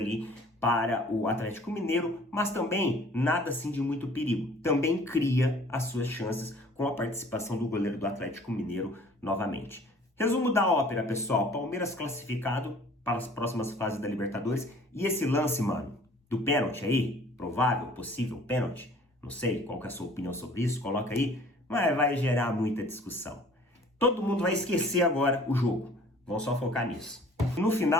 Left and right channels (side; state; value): both; normal; correlation 0.52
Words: para o Atlético Mineiro, mas também nada assim de muito perigo. Também cria as suas chances com a participação do goleiro do Atlético Mineiro novamente. Resumo da ópera, pessoal. Palmeiras classificado para as próximas fases da Libertadores. E esse lance, mano, do pênalti aí, provável, possível pênalti, não sei qual que é a sua opinião sobre isso, coloca aí, mas vai gerar muita discussão. Todo mundo vai esquecer agora o jogo. Vão só focar nisso. No